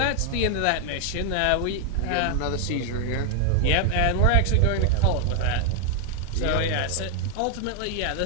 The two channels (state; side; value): different; both; correlation 0.00